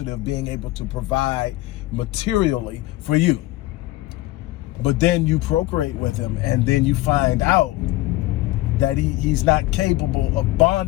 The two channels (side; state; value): right; quieter; 17.7 dB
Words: of being able to provide materially for you. But then you procreate with him, and then you find out that he's not capable of